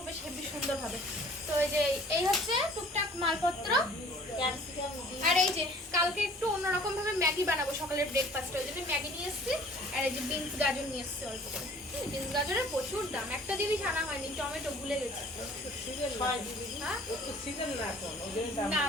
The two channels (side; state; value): both; normal; correlation 0.52